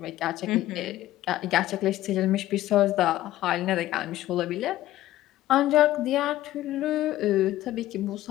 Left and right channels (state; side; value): quieter; right; 14.8 dB